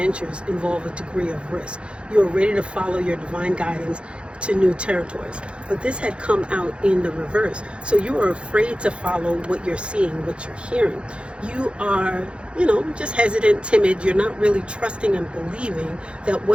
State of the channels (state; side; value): late; left; 0.058 ms